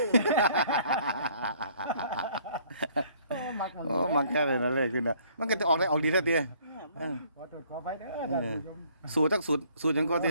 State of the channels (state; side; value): inverted; both; correlation -0.60